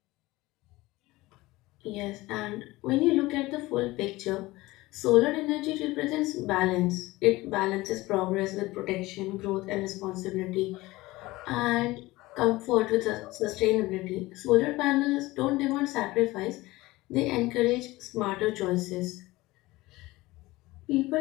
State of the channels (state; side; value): quieter; right; 19.7 dB